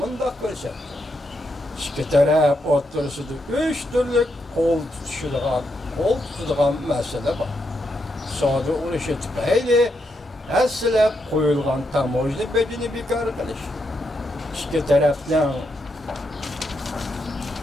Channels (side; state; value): both; normal; correlation 0.81